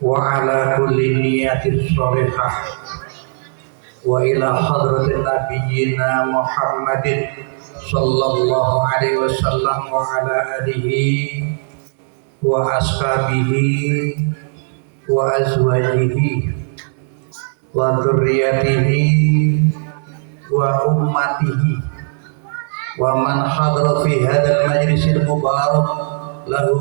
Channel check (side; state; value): left; silent; digital silence